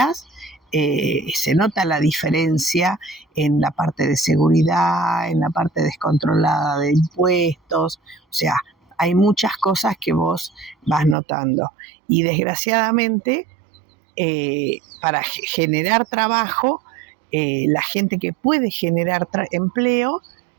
se nota la diferencia en la parte de seguridad, en la parte descontrolada de impuestos, o sea, hay muchas cosas que vos vas notando. Y desgraciadamente, para generar trabajo, la gente que puede generar empleo,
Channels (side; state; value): left; drops out; at 11.2 s